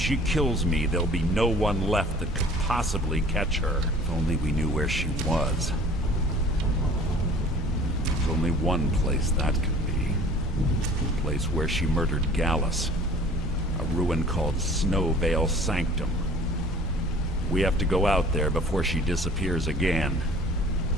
kills me, there'll be no one left that could possibly catch her. If only we knew where she was. There's only one place that could be. The place where she murdered Gallus. A ruin called Snowvale Sanctum. We have to go out there before she disappears again.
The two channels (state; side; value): normal; both; correlation 0.49